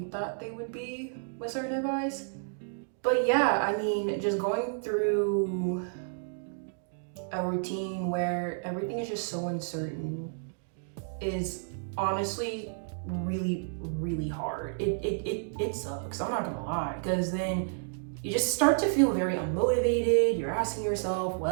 thought they would be with certain advice. But yeah, I mean, just going through a routine where everything is just so uncertain is honestly really, really hard. It sucks, I'm not gonna lie, because then you just start to feel very unmotivated. You're asking yourself,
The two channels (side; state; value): left; silent; digital silence